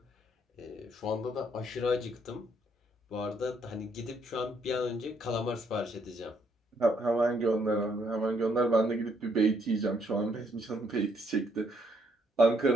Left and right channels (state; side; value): normal; both; correlation 0.70